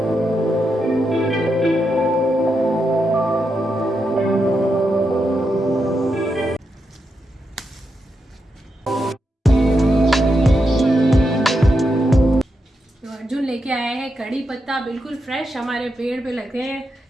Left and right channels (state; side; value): normal; both; correlation 0.85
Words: लेके आया है कड़ी पत्ता, बिल्कुल फ्रेश हमारे पेड़ पे लगे हैं,